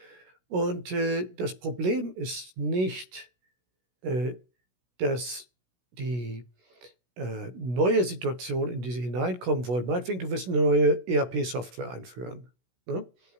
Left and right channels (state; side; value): late; left; 16 ms